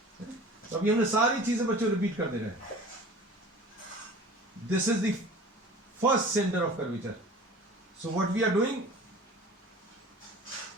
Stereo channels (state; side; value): normal; both; correlation 0.42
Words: तो अभी हमने सारी चीजें बच्चों रिपीट कर दे रहे हैं. This is the first centre of curvature. So what we are doing,